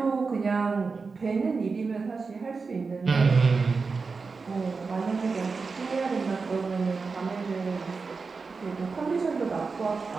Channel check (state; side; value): quieter; left; 4.6 dB